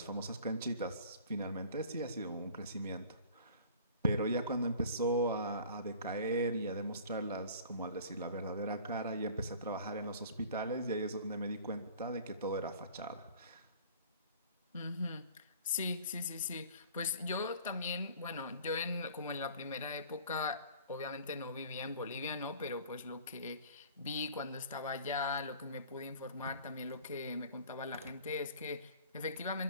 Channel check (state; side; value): inverted; both; correlation -0.47